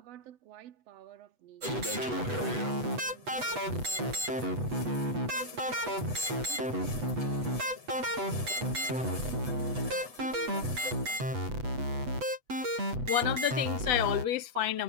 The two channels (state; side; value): late; left; 8.0 ms